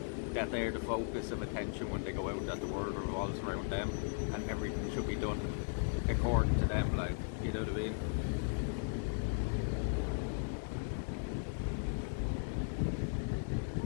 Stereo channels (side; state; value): right; silent; digital silence